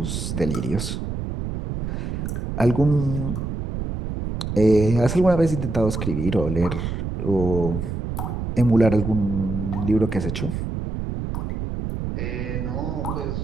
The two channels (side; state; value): right; noise; rumble, 4 dB below the sound